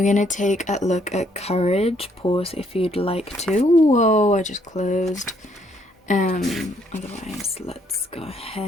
going to take a look at courage. Pause if you'd like to. Whoa, I just closed. Otherwise, let's go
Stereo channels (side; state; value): both; normal; correlation 0.69